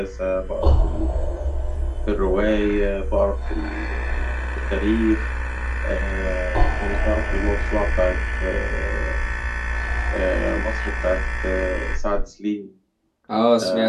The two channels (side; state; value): both; identical; correlation 1.00